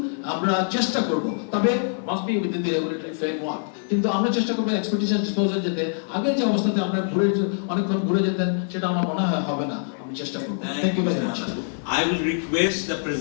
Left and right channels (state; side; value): silent; right; digital silence